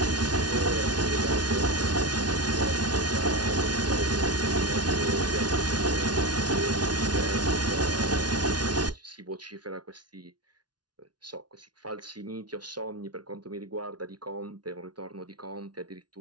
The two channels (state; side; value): late; left; 0.69 ms